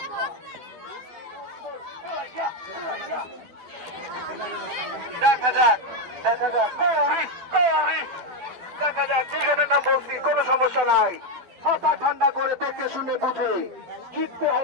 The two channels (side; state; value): left; late; 12 ms